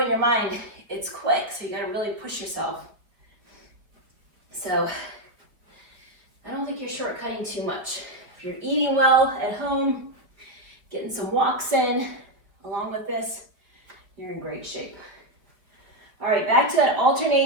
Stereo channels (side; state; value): left; late; 4.7 ms